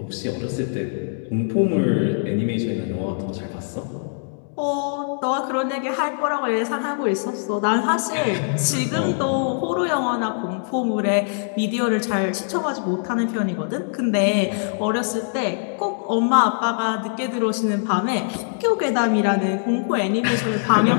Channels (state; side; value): silent; right; digital silence